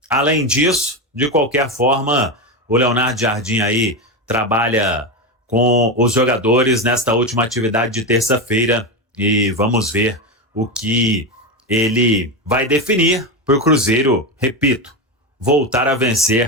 além disso. De qualquer forma, o Leonardo Jardim aí trabalha com os jogadores nesta última atividade de terça-feira e vamos ver o que ele vai definir para o Cruzeiro, repito, voltar a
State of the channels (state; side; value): normal; both; correlation 0.14